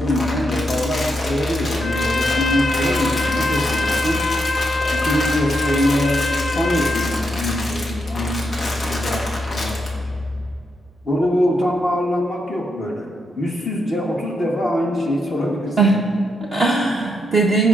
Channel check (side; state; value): both; normal; correlation 0.82